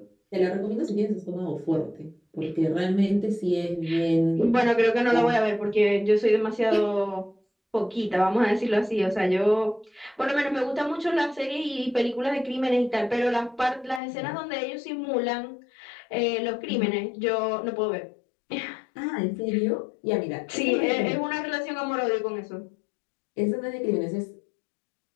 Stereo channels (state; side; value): drops out; right; at 14.0 s